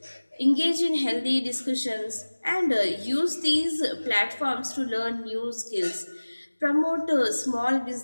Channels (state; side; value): inverted; both; correlation -1.00